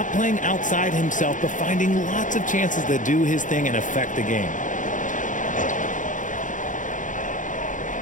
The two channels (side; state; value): right; late; 0.37 ms